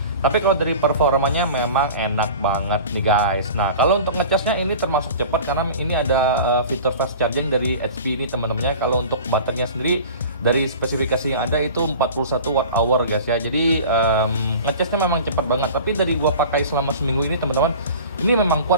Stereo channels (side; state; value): both; inverted; correlation -0.38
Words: Tapi kalau dari performanya memang enak banget nih guys. Nah kalau untuk ngecasnya ini termasuk cepat karena ini ada fitur fast charging dari HP ini teman-temannya. Kalau untuk baterainya sendiri dari spesifikasi yang ada itu 41 Wh guys ya. Jadi ngecasnya memang cepat banget. Tapi dari gua pakai selama seminggu ini teman-teman, ini memang